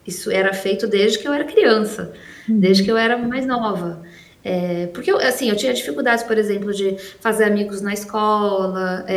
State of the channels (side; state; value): both; identical; correlation 1.00